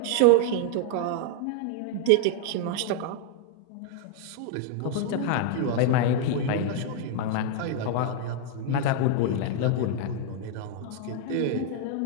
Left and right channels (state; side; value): different; both; correlation 0.00